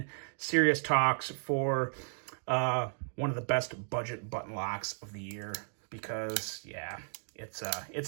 serious talks for one of the best budget button locks of the year because, yeah,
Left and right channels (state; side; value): silent; left; 55 dB below the other